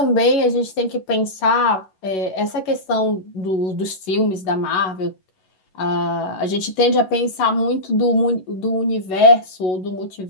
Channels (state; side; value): late; right; 11 ms